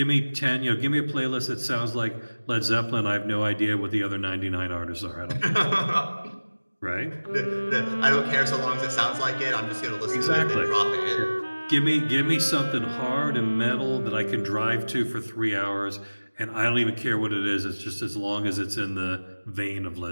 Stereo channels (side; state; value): both; inverted; correlation -1.00